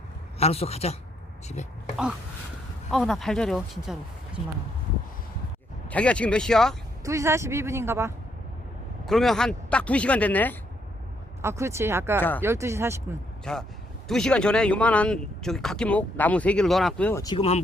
알았어, 가자 집에. 나 발저려 진짜로. 거짓말하고. 자기가 지금 몇 시야? 2시 42분인가 봐. 그러면 한 딱 2시간 됐네. 그렇지. 아까 자. 12시 40분. 자, 2시간 전에 요만한 저기 각기목 나무 3개를 넣어놨고요. 지금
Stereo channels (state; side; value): normal; both; correlation 0.74